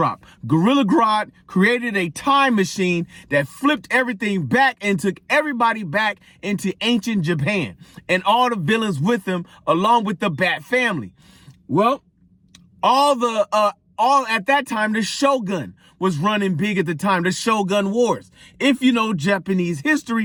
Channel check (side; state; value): both; identical; correlation 1.00